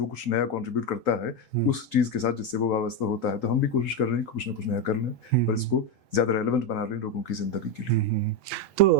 कुछ नया कंट्रीब्यूट करता है उस चीज के साथ जिससे वो वाबस्ता होता है। तो हम भी कोशिश कर रहे हैं कुछ ना कुछ नया कर लें, पर इसको ज्यादा रेलेवेंट बना लें लोगों की जिंदगी के लिए।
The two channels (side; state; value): both; normal; correlation 0.09